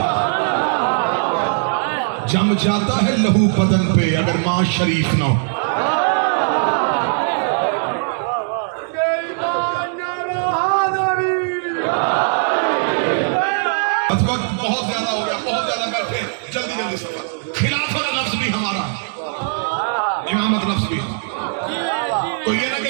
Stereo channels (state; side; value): silent; left; digital silence